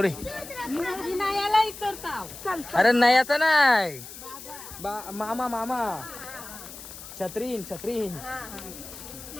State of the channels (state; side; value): noise; left; hiss, 14 dB below the sound